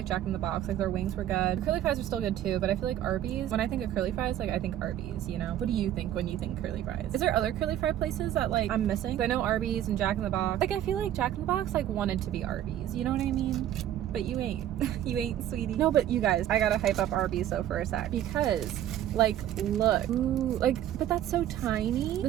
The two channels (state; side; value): quieter; left; 11.8 dB